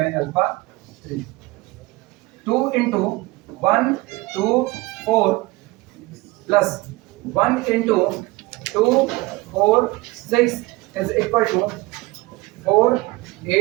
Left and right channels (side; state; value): left; quieter; 21.5 dB